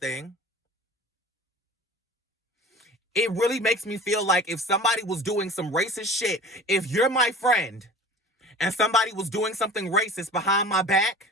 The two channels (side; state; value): both; normal; correlation 0.40